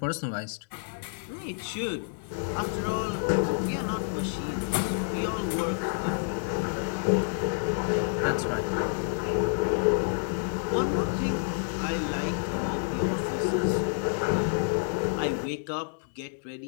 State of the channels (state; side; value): silent; right; 59 dB below the other